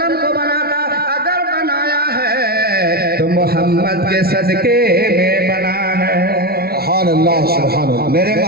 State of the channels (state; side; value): late; left; 0.45 ms